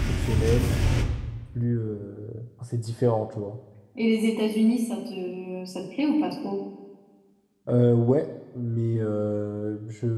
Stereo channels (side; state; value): both; identical; correlation 1.00